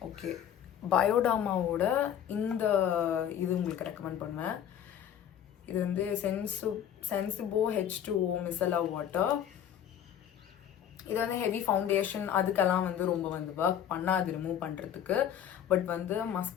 Okay, பயோடர்மாவோட இந்த இது உங்களுக்கு ரெக்கமெண்ட் பண்ணுவேன். இது வந்து சென்சிபோ H2O மிசலா வாட்டர். இது வந்து ஹெவி ஃபவுண்டேஷன் அதுக்கெல்லாம் வந்து ரொம்ப வந்து ஒர்க் பண்ணாது ரிமூவ் பண்ணுறதுக்கு. பட் வந்து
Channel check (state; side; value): quieter; right; 9.6 dB